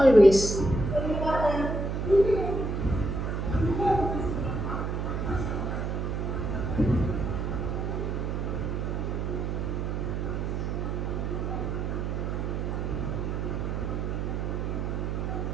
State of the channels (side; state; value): right; noise; hum, 1 dB below the sound